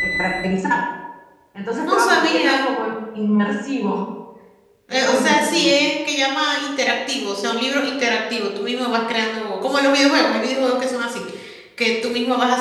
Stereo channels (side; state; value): both; identical; correlation 1.00